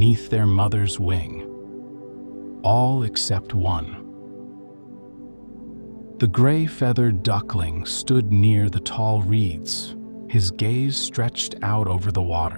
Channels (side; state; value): both; inverted; correlation -1.00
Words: their mother's wing, all except one. The gray-feathered duckling stood near the tall reeds, his gaze stretched out over the